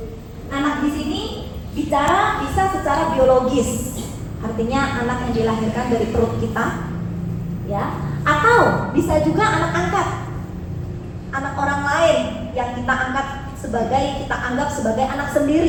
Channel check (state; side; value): identical; both; correlation 1.00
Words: Anak di sini bicara bisa secara biologis, artinya anak yang dilahirkan dari perut kita, ya, atau bisa juga anak angkat, anak orang lain yang kita angkat kita anggap sebagai anak